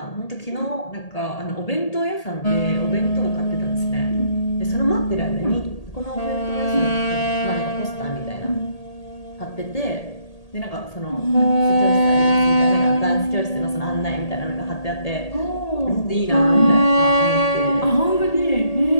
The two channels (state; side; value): late; right; 1.8 ms